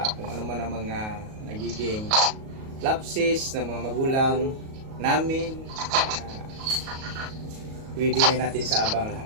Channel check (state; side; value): late; left; 37 ms